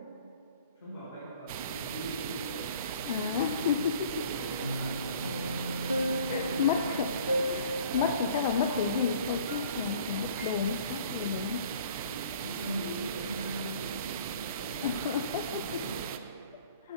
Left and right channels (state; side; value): inverted; both; correlation -0.50